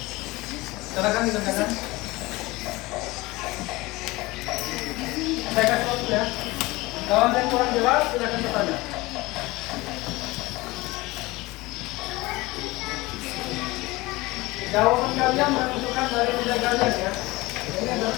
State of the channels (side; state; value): right; quieter; 21.3 dB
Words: Silakan ditanyakan. Saya kasih waktu ya. Kalau ada yang kurang jelas, silakan bertanya. Jawaban kalian menentukan dari nilai kalian ya. Ini